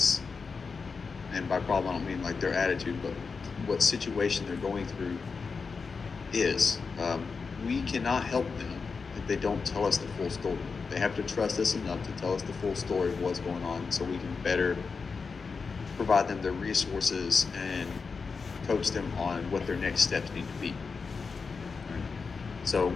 And by problem, I don't mean like their attitude, but what situation they're going through is. We cannot help them if they don't tell us the full story. They have to trust us enough to tell us the full story of what's going on, so we can better provide them the resources and coach them on what their next steps need to be. Right? So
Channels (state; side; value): quieter; right; 5.0 dB